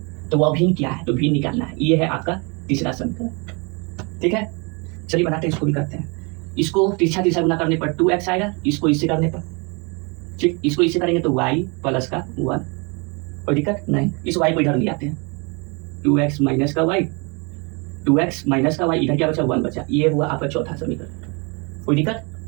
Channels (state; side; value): quieter; left; 31.4 dB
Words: तो वह भिन्न क्या है, तो भिन्न निकालना है, ये है आपका तीसरा समीकरण, ठीक है। चलिए बनाते हैं, इसको भी करते हैं। इसको तिरछा गुना करने पर 2x आएगा, इसको इससे करने पर, ठीक, इसको इससे करेंगे तो y प्लस का 1, कोई दिक्कत नहीं। इस y को इधर ले आते हैं, 2x माइनस का y, 2x माइनस का y, इधर क्या बचा, 1 बचा, ये हुआ आपका चौथा समीकरण, कोई दिक्कत।